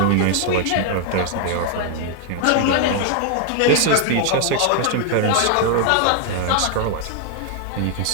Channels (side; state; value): both; different; correlation 0.00